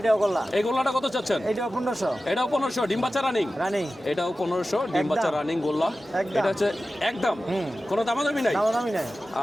গোল্লা। এই গোল্লাটা কত চাচ্ছেন? এটাও 1500 এটাও 1500 ডিম বাচ্চা রানিং। রানিং এটাও 1500 ডিম বাচ্চা একদম। রানিং গোল্লা। একদম। এটা হচ্ছে একদম কোনো দামাদামি নাই। দামি নাই।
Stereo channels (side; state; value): both; normal; correlation 0.95